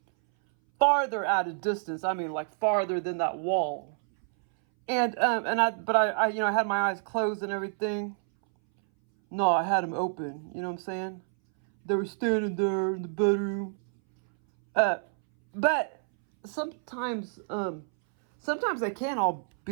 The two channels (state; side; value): silent; left; 59 dB below the other